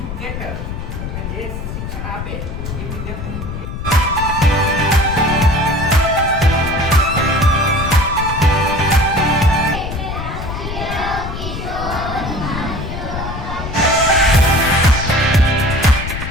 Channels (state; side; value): noise; left; rumble, 6 dB below the sound